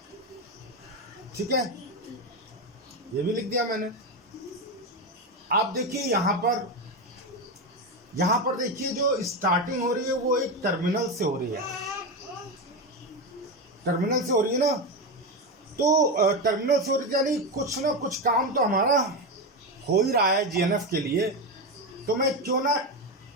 ठीक है, ये भी लिख दिया मैंने। आप देखिए यहां पर देखिए जो स्टार्टिंग हो रही है वो एक टर्मिनल से हो रही है, टर्मिनल से हो रही है ना। तो टर्मिनल से हो रही है यानी कुछ ना कुछ काम तो हमारा हो ही रहा है जीएनएफ के लिए। तो मैं क्यों ना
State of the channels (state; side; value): normal; both; correlation 0.14